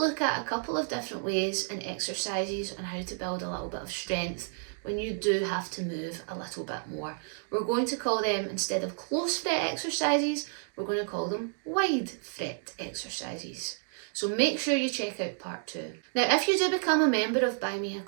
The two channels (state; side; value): silent; left; digital silence